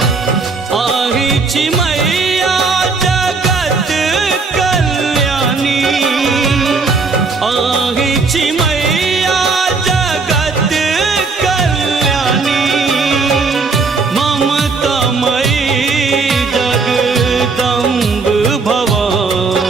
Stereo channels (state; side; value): quieter; left; 4.3 dB